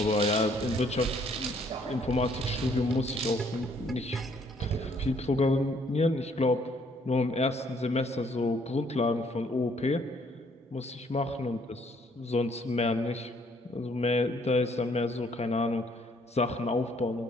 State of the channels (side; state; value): both; normal; correlation 0.65